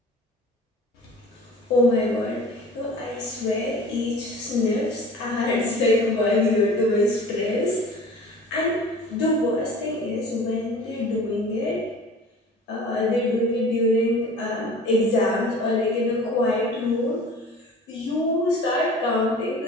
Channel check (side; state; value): both; normal; correlation 0.42